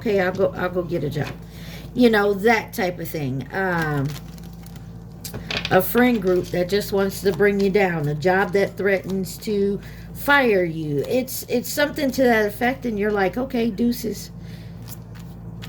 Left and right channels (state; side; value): identical; both; correlation 1.00